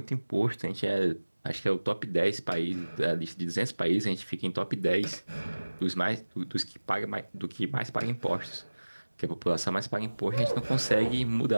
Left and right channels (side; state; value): both; inverted; correlation -1.00